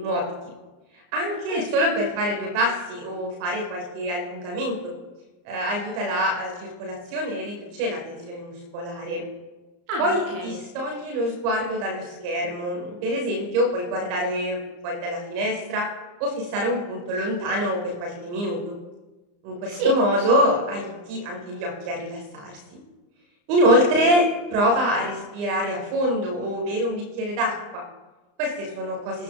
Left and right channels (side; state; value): left; late; 34 ms